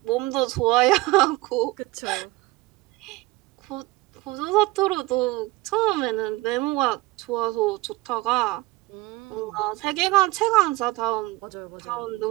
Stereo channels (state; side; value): quieter; left; 20.5 dB